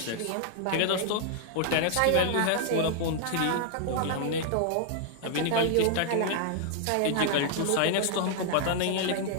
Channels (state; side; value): different; both; correlation 0.00